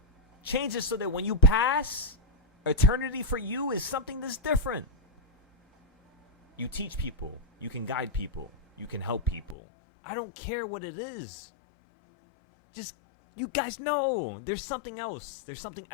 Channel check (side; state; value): right; drops out; at 9.6 s